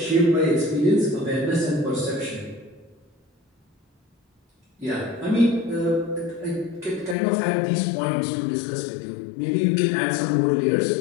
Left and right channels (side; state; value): right; drops out; at 7.2 s